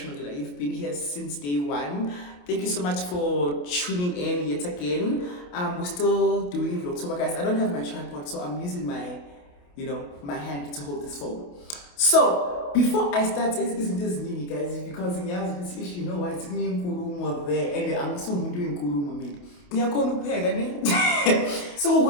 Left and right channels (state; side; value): late; right; 28 ms